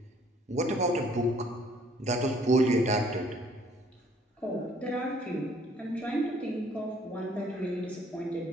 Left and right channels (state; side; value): normal; both; correlation 0.60